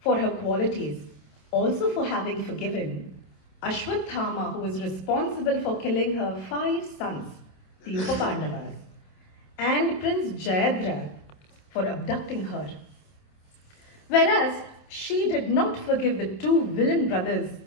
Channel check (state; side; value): late; right; 27 ms